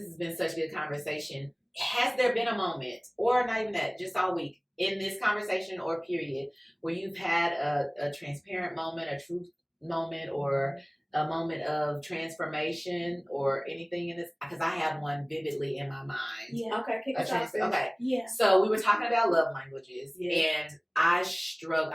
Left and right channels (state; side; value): identical; both; correlation 1.00